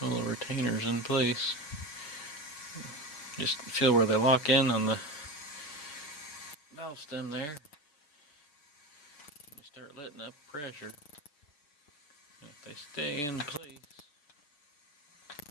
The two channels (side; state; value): right; late; 6.8 ms